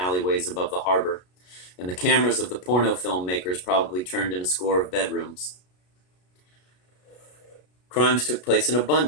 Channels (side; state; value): right; late; 33 ms